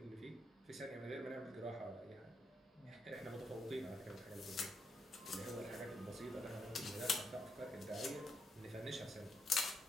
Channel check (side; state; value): both; normal; correlation 0.79